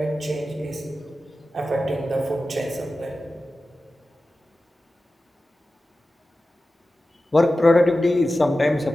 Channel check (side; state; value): both; normal; correlation 0.94